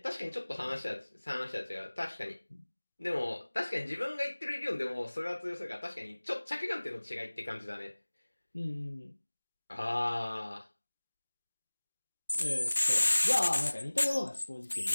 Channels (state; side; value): inverted; both; correlation -1.00